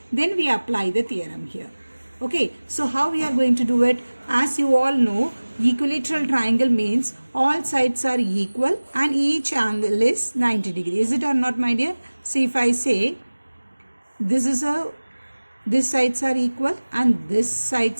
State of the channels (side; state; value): both; inverted; correlation -1.00